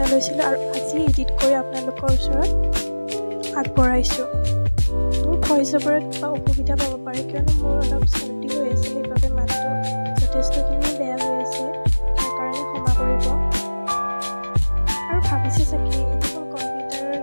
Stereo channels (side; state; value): both; inverted; correlation -1.00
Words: লৈছিলোঁ আৰু আজি এডিট কৰি আপোনালোকৰ ওচৰত আগবঢ়াইছোঁ। মোৰ ভইচ অভাৰত কিবা অসুবিধা পাব পাৰে, কিয়নো মোৰ অলপ চৰ্দি হৈ আছে, সেইবাবে মাতটো যথেষ্টখিনি বেয়া হৈ আছে, তাৰ কাৰণে ক্ষমা কৰিব। আৰু ভাবিছে চাগে এইটো